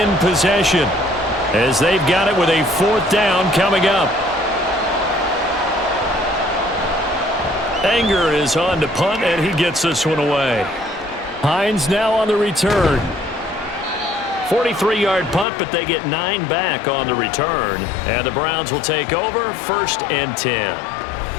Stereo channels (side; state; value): right; drops out; at 15.5 s